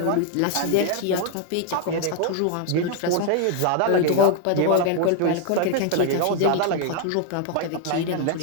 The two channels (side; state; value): both; different; correlation 0.00